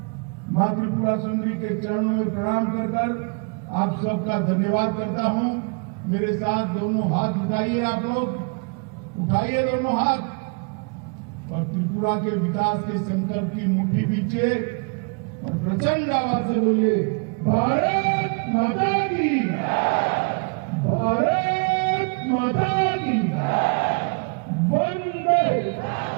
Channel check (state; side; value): quieter; left; 37.2 dB